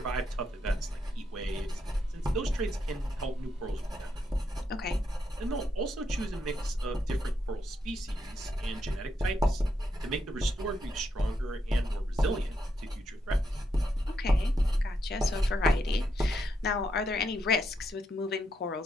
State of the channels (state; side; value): normal; both; correlation 0.80